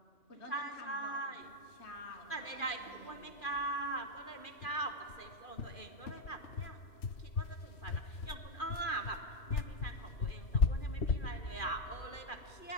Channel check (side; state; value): right; late; 2.4 ms